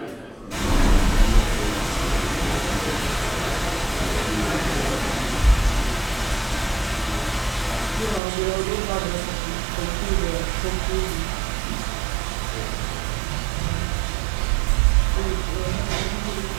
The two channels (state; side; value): drops out; left; at 8.2 s